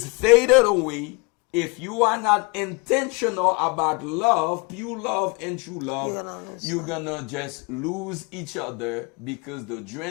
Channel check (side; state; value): right; quieter; 28.8 dB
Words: faded away, if you are not intentional about love, pure love and true love, you're gonna just lose each other because the